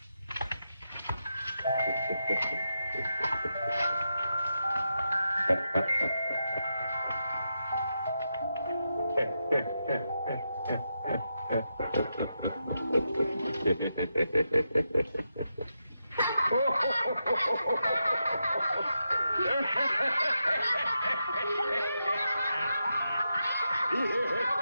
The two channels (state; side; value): inverted; both; correlation -0.86